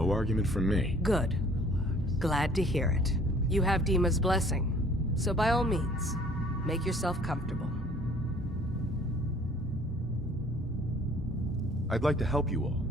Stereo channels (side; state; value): both; normal; correlation 0.55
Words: argument from me. Good. Glad to hear it. You have DIMA's blessing, so by all means, make yourself comfortable. I'd like to help you all.